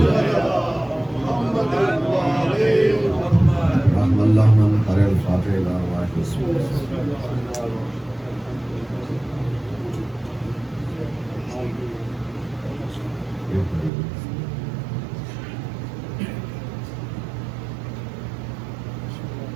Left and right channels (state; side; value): drops out; left; at 13.9 s